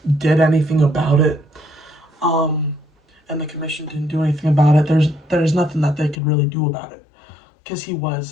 did anything about it. Um, and the commission didn't do anything about it. There's nothing that they could really do about it because he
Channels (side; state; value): right; drops out; at 6.2 s